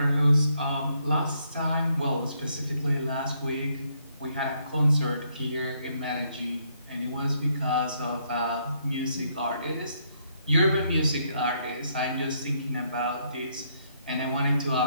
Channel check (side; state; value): both; inverted; correlation -0.73